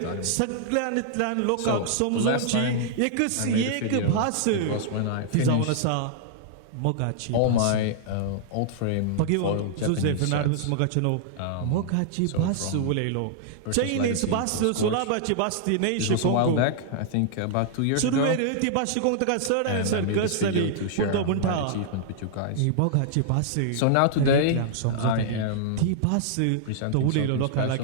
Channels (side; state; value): both; different; correlation -0.01